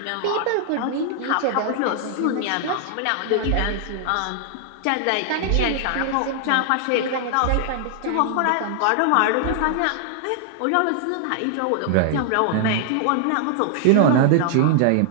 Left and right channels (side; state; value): both; different; correlation 0.00